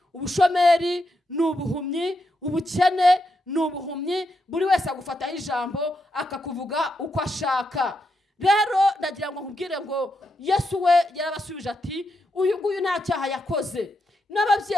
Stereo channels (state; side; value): normal; both; correlation 0.83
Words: ubushomeri ni ubuhumyi, ubukene n'ubuhumyi, buri wese agufataho ijambo akakuvuga uko ashaka. Rero ndagira ngo nkubwire ngo Yesu we yarabasubije ati uyu nguyu nta cyaha yakoze,